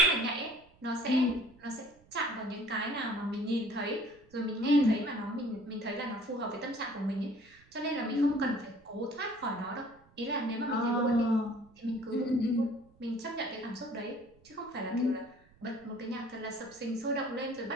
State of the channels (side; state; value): right; noise; rumble, 28 dB below the sound